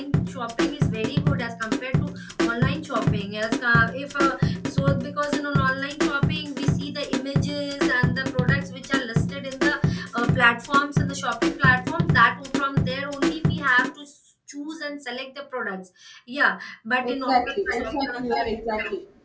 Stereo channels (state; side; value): identical; both; correlation 1.00